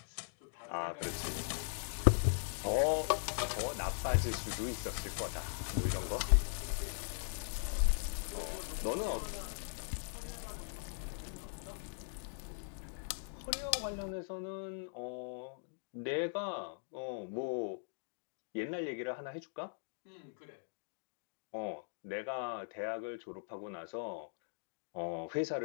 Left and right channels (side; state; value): right; silent; digital silence